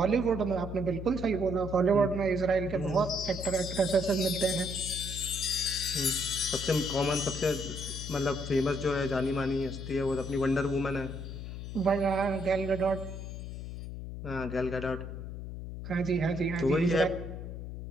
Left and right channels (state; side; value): noise; left; hum, 8 dB below the sound